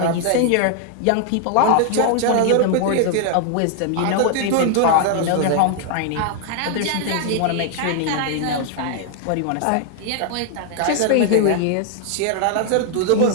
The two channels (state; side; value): different; both; correlation 0.00